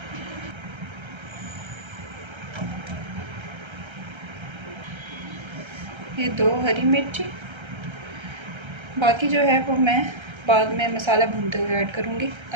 ये 2 हरी मिर्ची, बाकी जो है वो मैं बाद में मसाला भूनते हुए ऐड करूँगी।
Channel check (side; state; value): left; late; 1.3 ms